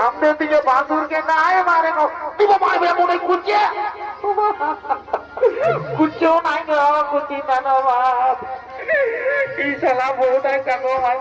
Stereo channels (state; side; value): identical; both; correlation 1.00